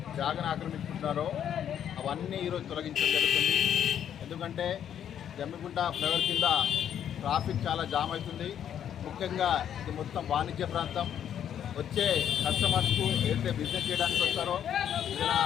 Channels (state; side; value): quieter; right; 9.5 dB